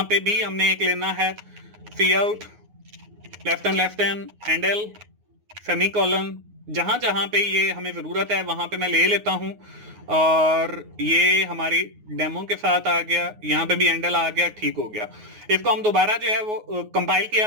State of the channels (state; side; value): late; left; 9.5 ms